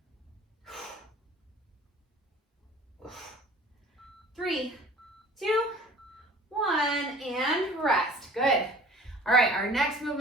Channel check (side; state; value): both; normal; correlation 0.47